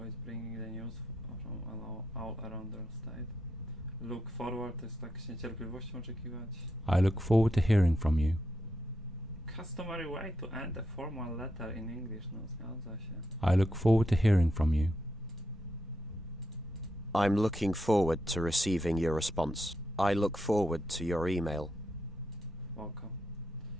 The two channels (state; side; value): normal; both; correlation 0.83